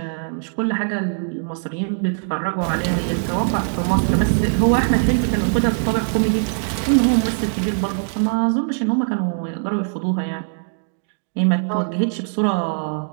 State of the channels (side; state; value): left; silent; digital silence